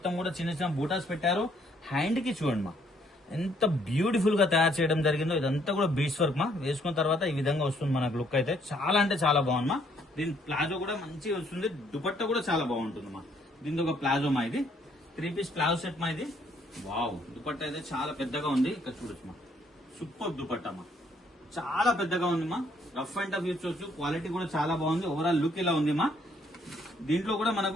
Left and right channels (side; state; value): both; normal; correlation 0.67